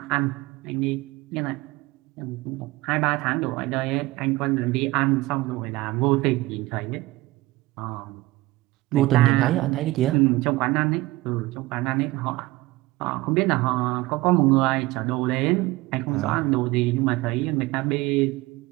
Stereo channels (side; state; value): left; quieter; 19.6 dB